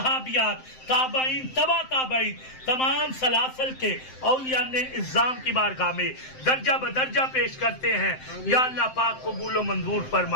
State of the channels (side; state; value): right; late; 7.7 ms